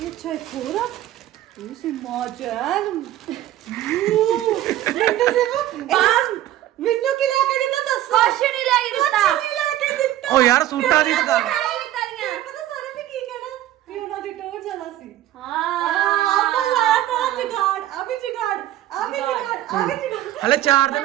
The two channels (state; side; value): quieter; left; 13.5 dB